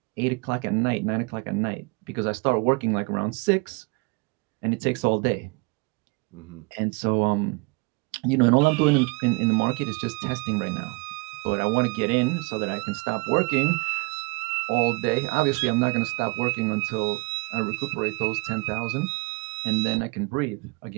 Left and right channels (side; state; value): left; quieter; 28.8 dB